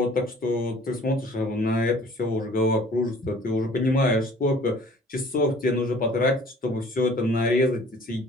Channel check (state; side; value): normal; both; correlation 0.52